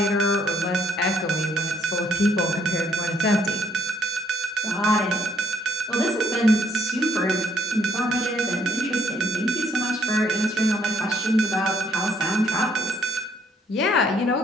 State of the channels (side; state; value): both; normal; correlation 0.68